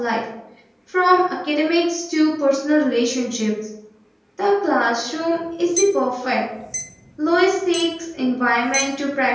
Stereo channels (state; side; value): identical; both; correlation 1.00